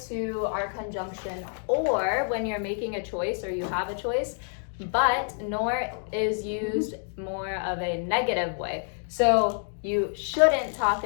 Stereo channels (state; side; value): silent; right; digital silence